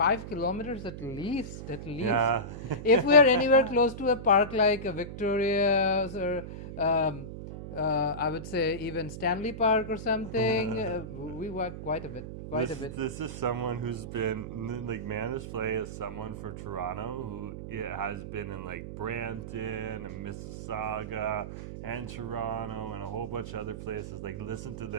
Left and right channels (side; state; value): right; noise; hum, 9 dB below the sound